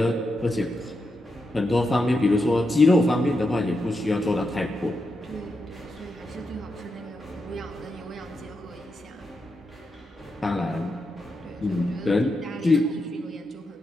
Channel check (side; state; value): both; normal; correlation 0.85